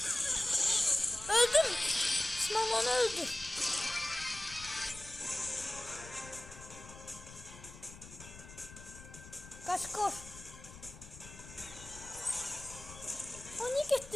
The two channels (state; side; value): noise; left; rumble, 16 dB below the sound